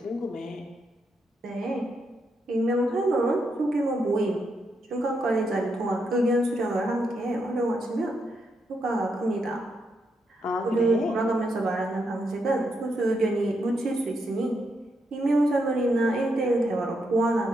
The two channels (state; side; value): normal; both; correlation 0.80